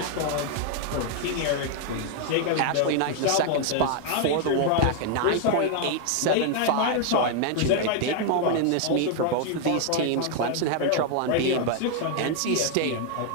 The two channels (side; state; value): both; different; correlation 0.00